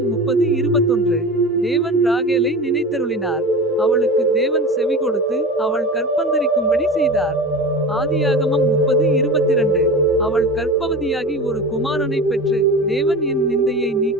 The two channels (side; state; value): both; normal; correlation 0.31